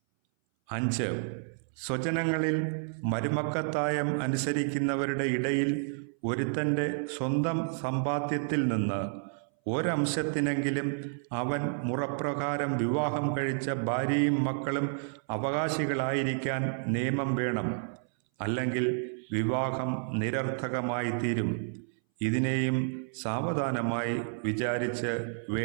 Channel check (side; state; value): left; silent; 58 dB below the other